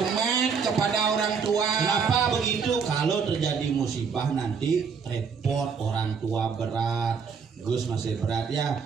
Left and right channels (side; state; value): left; quieter; 6.0 dB